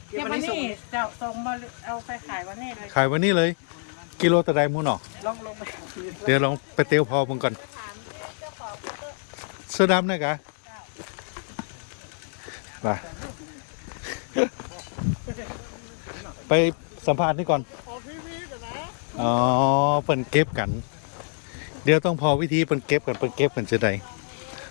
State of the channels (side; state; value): right; silent; 57 dB below the other